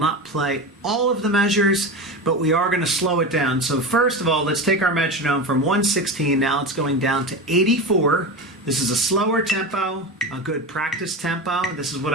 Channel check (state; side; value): normal; both; correlation 0.24